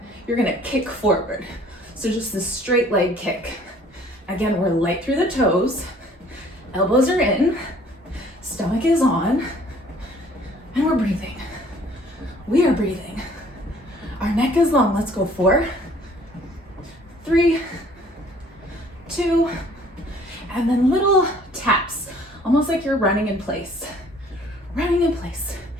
you're gonna kick forward. So just this straight leg kick. Again, we're light through the toes. Elbows are in, stomach is on, and we're breathing. We are breathing. Our neck is long. Let's go. 4, 3, 2, and then little taps, almost like you're running in place. Running in place.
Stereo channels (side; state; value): both; normal; correlation 0.56